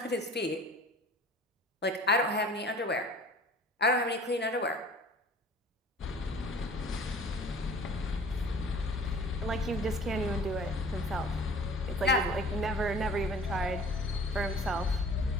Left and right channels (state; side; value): normal; both; correlation 0.46